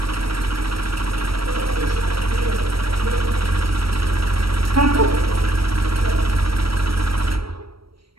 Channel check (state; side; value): late; left; 0.75 ms